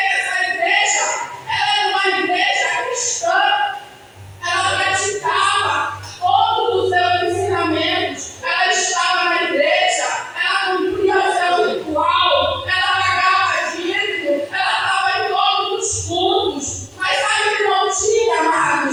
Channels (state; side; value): identical; both; correlation 1.00